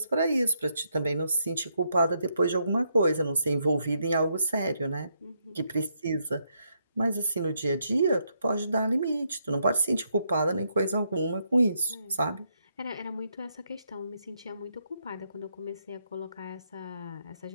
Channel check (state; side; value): inverted; both; correlation -0.78